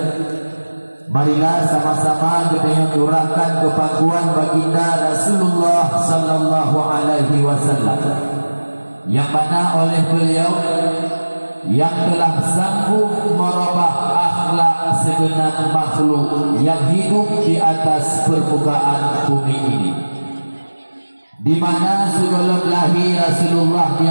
marilah sama-sama kita curahkan kepakuan baginda Rasulullah sallallahu alaihi wasallam, yang mana oleh beliau yang telah sanggup merubah akhlak segenap makhluk yang hidup di atas permukaan bumi ini, di mana sebelum lahir Rasulullah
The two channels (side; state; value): both; inverted; correlation -1.00